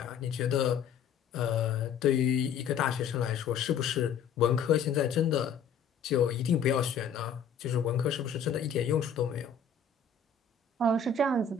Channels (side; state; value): right; quieter; 6.4 dB